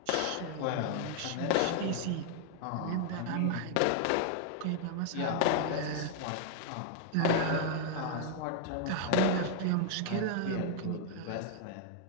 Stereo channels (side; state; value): both; different; correlation 0.00